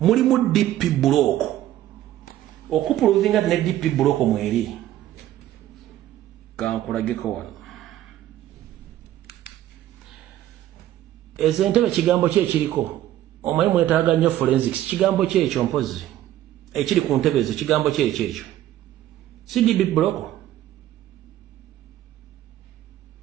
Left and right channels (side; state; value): left; quieter; 13.2 dB